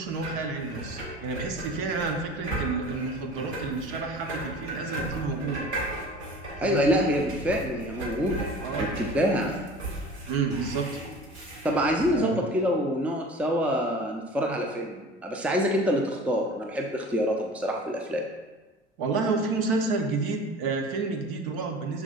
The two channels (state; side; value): normal; both; correlation 0.41